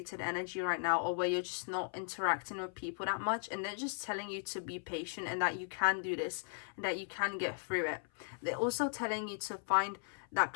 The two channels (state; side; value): silent; right; 53 dB below the other